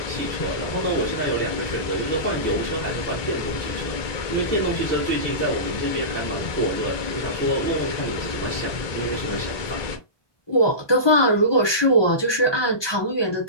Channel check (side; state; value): right; late; 1.2 ms